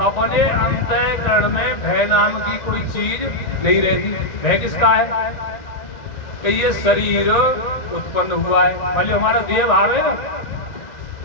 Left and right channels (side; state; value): right; late; 1.9 ms